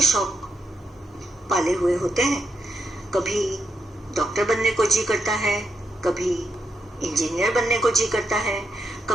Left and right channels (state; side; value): normal; both; correlation 0.82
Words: शौक पाले हुए होते हैं। कभी डॉक्टर बनने को जी करता है, कभी इंजीनियर बनने को जी करता है,